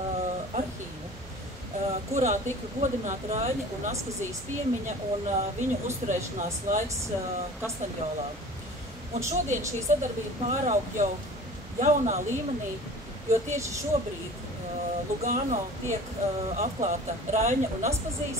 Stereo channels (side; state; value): both; normal; correlation 0.42